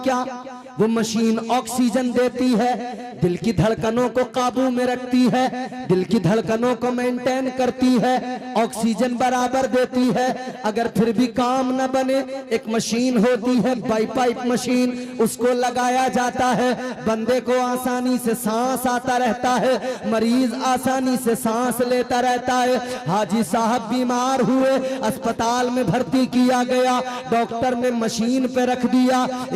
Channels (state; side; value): identical; both; correlation 1.00